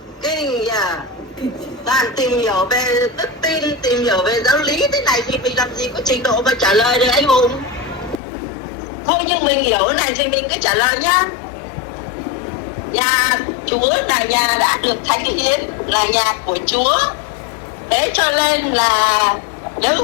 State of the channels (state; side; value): drops out; right; at 8.2 s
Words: Kinh nhờ. Toàn tìm hiểu về đức tin, tìm hiểu về giáo lý thế này thì mình làm gì có trình độ mà trả lời được anh Hùng. Thôi nhưng mình hiểu cái này thì mình cứ trả lời nhá. Nhà Chúa là nhà đã được thánh hiến, là nhà của Chúa. Thế cho nên là